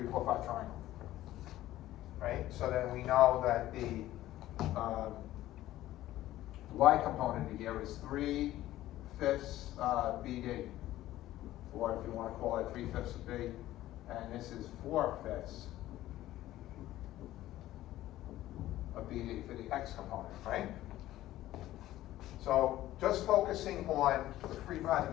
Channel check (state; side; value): quieter; right; 14.8 dB